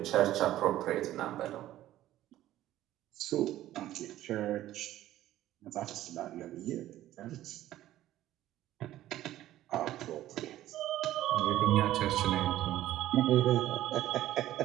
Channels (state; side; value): quieter; left; 13.9 dB